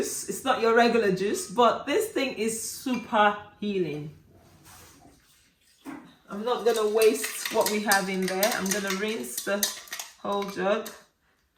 It's not your regular juice, but this thing is super healing. I'm not gonna waste what we have in there. I'm gonna rinse the whole jug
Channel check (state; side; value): identical; both; correlation 1.00